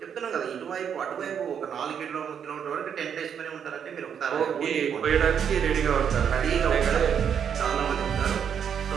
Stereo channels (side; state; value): left; quieter; 7.9 dB